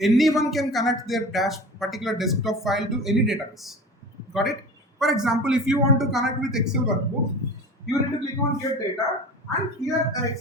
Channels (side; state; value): both; normal; correlation 0.35